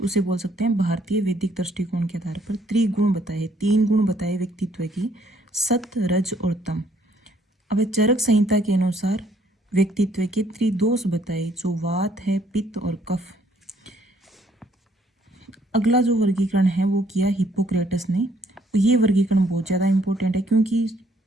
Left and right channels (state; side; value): normal; both; correlation 0.66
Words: उसे बोल सकते हैं भारतीय वैदिक दृष्टिकोण के आधार पर त्रिगुण बताए, 3 गुण बताए व्यक्तित्व की, सत, रज और तम। अब चरक संहिता के अनुसार व्यक्तित्व के त्रिदोष बताए, जो वात है, पित्त और कफ। अगला जो वर्गीकरण है वो किया हिप्पोक्रेटस ने। ये वर्गीकरण बहुत ज़्यादा इम्पोर्टेंट है क्योंकि